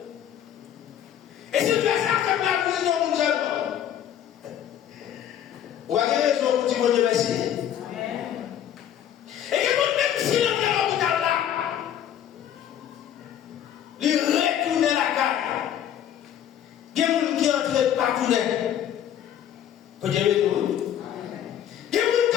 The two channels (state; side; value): quieter; right; 10.3 dB